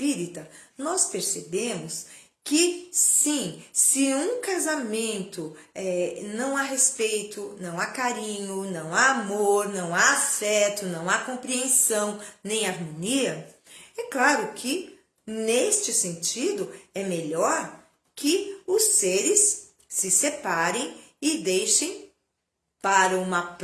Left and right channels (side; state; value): both; identical; correlation 1.00